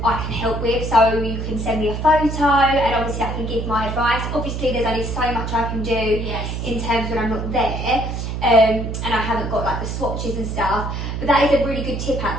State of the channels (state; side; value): noise; right; hum, 4 dB below the sound